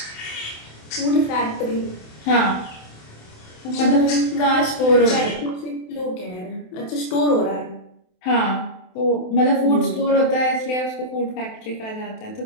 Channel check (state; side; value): late; right; 27 ms